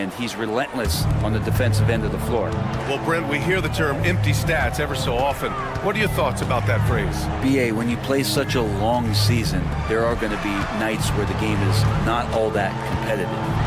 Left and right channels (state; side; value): identical; both; correlation 1.00